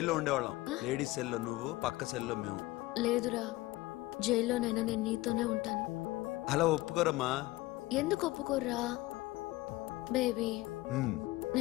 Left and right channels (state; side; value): quieter; right; 19.2 dB